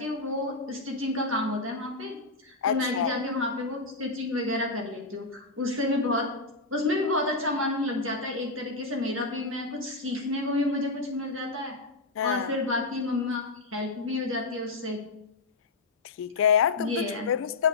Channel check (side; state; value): right; quieter; 3.3 dB